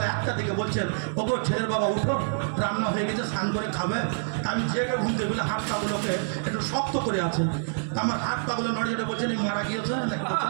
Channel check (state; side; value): silent; left; digital silence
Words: 1টার দিকে বলছেন ওগো ছেলের বাবা উঠো রান্না হয়ে গেছে স্নান করে খাবে আমি জেগে ঘুম দিয়ে বলে হাত পাগুলোকে একটু শক্ত করে আছে আমার হাত পাগুলো নড়িয়ে বলছেন এই মারা গিয়েছে নাকি